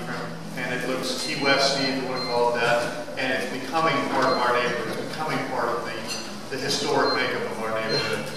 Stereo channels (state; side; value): identical; both; correlation 1.00